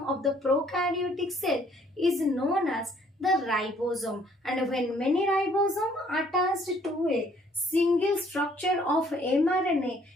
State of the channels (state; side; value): normal; both; correlation 0.62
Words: of the prokaryotic cell is known as the ribosome. And when many ribosomes are attached to a single structure of mRNA,